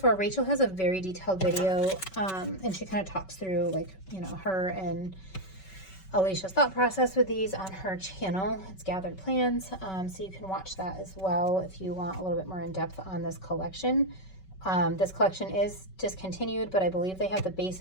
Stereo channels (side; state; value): right; late; 5.3 ms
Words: Rachel has a very detailed video, and she kind of talks through like, you know, her and Alicia's thought process with these on her channel. It's Gathered Plans, so you can watch that as well if you want a little bit more in depth on this collection. This collection is discontinued, but I believe they have the